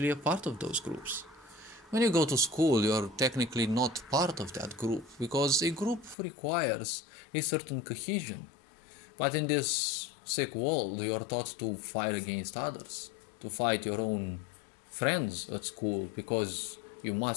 a part of those groups. When you go to school, you're technically not part of that group because a group requires a certain cohesion. But in this sick world, you're taught to fight against others, to fight your own friends at school because you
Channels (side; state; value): right; drops out; at 6.2 s